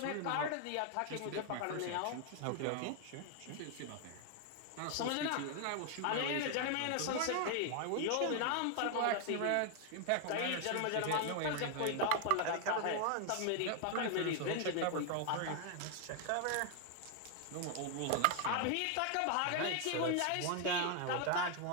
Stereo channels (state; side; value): different; both; correlation 0.00